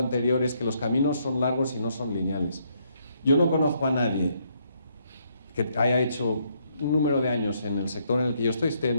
es que los caminos son largos y no son lineales. Yo no conozco a nadie que haya hecho un número de años en el sector en el que yo estoy, esté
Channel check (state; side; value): inverted; both; correlation -0.73